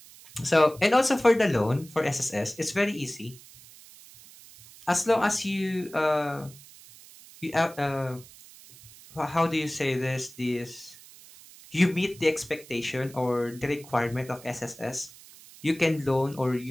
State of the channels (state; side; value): noise; right; hiss, 21 dB below the sound